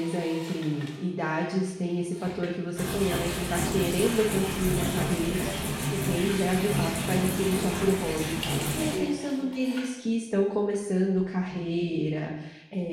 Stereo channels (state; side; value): identical; both; correlation 1.00